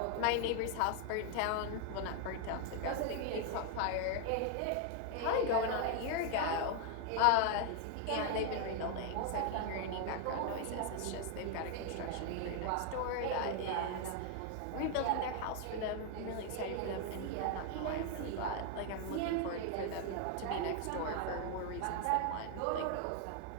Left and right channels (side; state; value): both; different; correlation 0.00